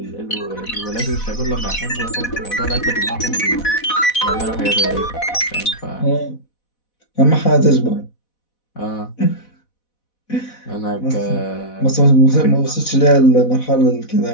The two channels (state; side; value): late; right; 4.1 ms